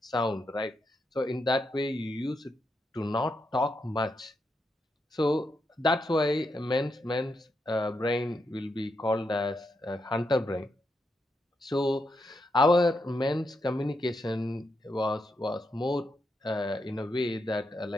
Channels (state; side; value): normal; both; correlation 0.83